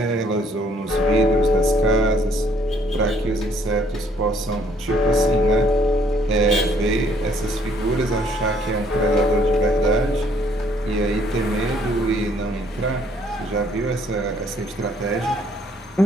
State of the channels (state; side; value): normal; both; correlation 0.63